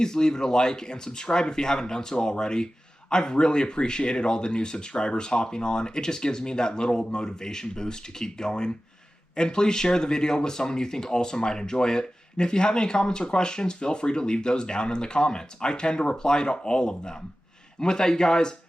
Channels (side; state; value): both; normal; correlation 0.95